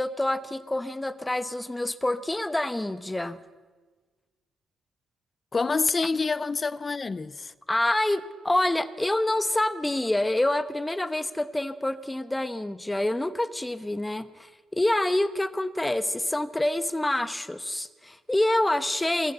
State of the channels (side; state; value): both; normal; correlation 0.98